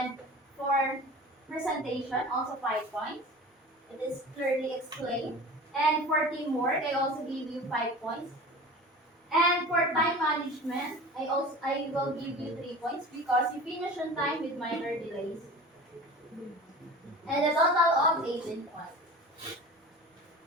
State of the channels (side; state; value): both; normal; correlation 0.37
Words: for presentation, also 5 points. It is clearly explained. And for teamwork, I also give you 5 points. And for time management, I will give you 3 points because you finish on time with minor delays. And a total of 18 points.